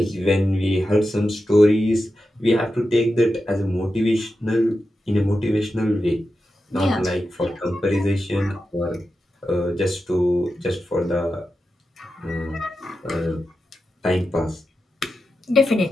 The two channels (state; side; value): normal; both; correlation 0.90